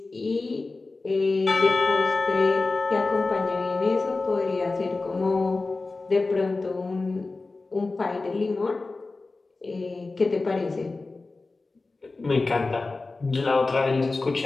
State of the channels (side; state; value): right; quieter; 3.6 dB